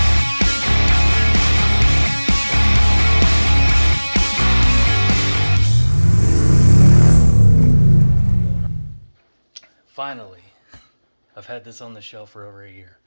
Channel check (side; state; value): both; inverted; correlation -1.00